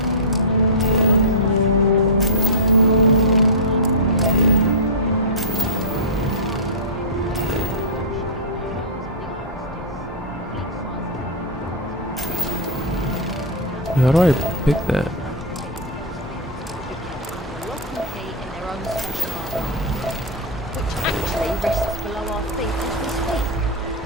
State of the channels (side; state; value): both; normal; correlation -0.10